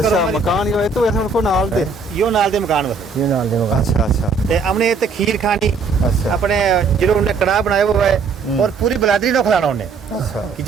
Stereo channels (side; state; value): left; quieter; 4.7 dB